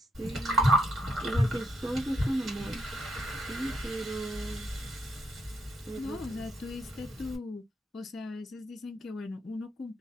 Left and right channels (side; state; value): both; normal; correlation 0.77